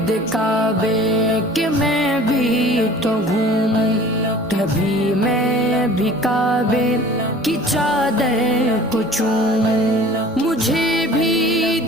کعبے کہ میں بھی تو گھوموں، کبھی میں بھی کعبے کی چادر کو چوموں، مجھے بھی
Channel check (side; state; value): both; normal; correlation 0.46